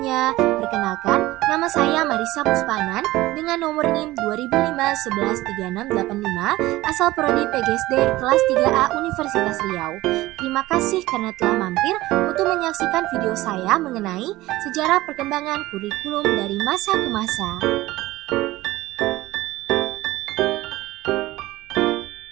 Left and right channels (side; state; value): left; quieter; 17.9 dB